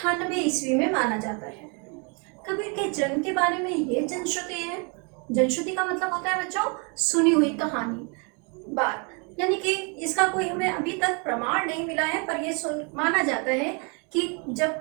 ईस्वी में माना जाता है। कबीर के जन्म के बारे में ये जनश्रुति है। जनश्रुति का मतलब होता है बच्चों सुनी हुई कहानी, बात, यानी कि इसका कोई हमें अभी तक प्रमाण नहीं मिला है, पर यह माना जाता है कि जब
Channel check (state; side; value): quieter; left; 34.5 dB